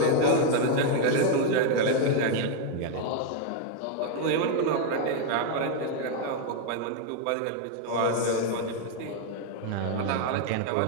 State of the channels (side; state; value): both; different; correlation 0.00